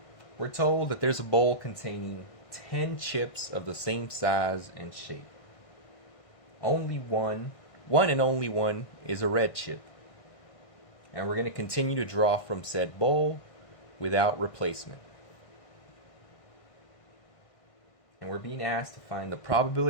we're told that there's a bowl containing 10 chips of the same size and shape. Only one and only one, is a red chip. And we're going to continue to draw from said bowl without replacement. And we're being asked to find the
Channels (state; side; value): late; right; 1.6 ms